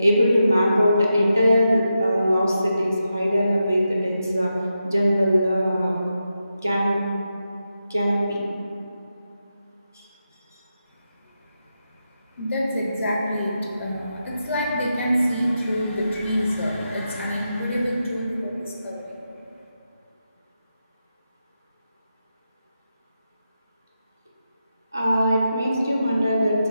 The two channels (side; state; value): both; inverted; correlation -0.87